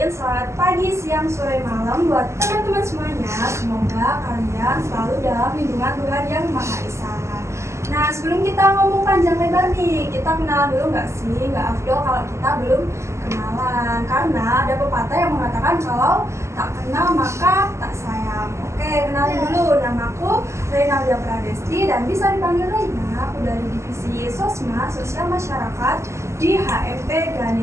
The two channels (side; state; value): left; late; 0.13 ms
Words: selamat pagi, siang, sore, malam buat teman-teman semuanya. Semoga kalian selalu dalam lindungan Tuhan Yang Maha Esa. Nah, sebelum kita ngomong panjang lebar nih, kita kenalan dulu nggak sih? Nggak afdol kalau kita belum kenalan. Karena ada pepatah yang mengatakan kalau tak kenal maka tak sayang. Oke, kenalin dulu. Namaku Reynaldia Pradesti dan bisa dipanggil Reina. Aku dari Divisi Sosma, Sosial Masyarakat di HMP